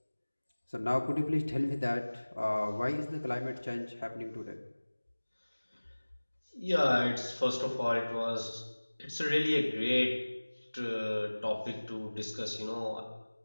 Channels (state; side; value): inverted; both; correlation -1.00